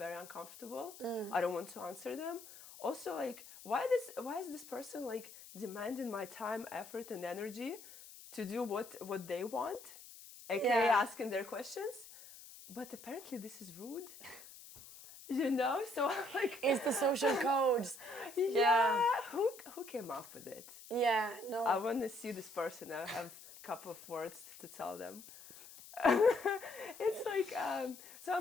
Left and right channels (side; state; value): left; noise; hiss, 17 dB below the sound